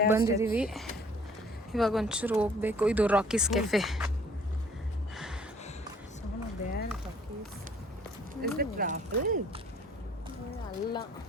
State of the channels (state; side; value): normal; both; correlation 0.56